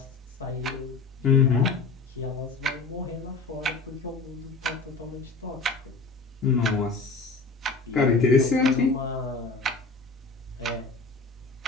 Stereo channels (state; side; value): quieter; right; 3.9 dB